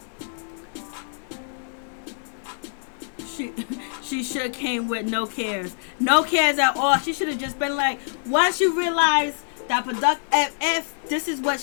She should have came with no cares at all. She should have just been like, once you realize that if this is what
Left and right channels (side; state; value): right; silent; digital silence